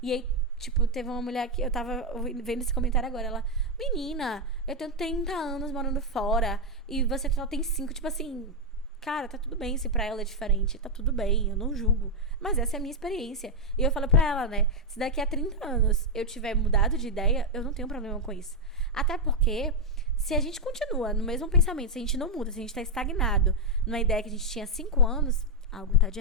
E aí, tipo, teve uma mulher que eu tava vendo esse comentário agora. Ela, menina, eu tenho 30 anos morando fora e você só tem 5. Tipo assim, cara, tá tudo bem se pra ela é diferente. Tá tudo bem, eu não julgo. Mas essa é a minha experiência. E eu falo pra ela, né, se daqui a 30 anos eu tiver mudado de ideia, eu não tenho problema com isso. Até porque, se a gente continua no mesmo pensamento, se a gente não muda, se a gente tá estagnado numa ideia que a gente tinha 5 anos... algo tá de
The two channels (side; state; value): both; normal; correlation 0.01